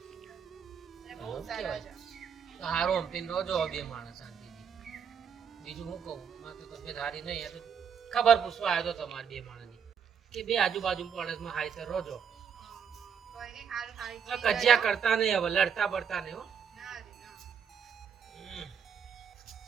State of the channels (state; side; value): quieter; left; 7.1 dB